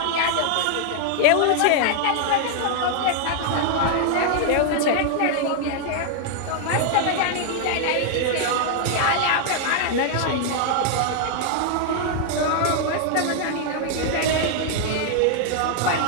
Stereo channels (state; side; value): different; both; correlation 0.00